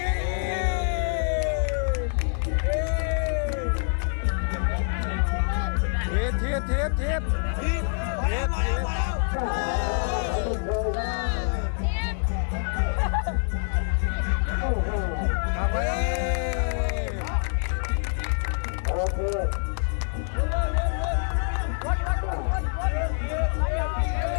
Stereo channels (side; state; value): right; silent; digital silence